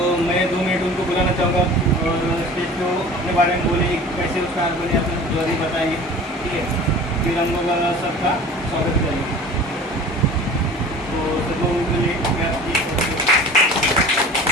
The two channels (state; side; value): normal; both; correlation 0.42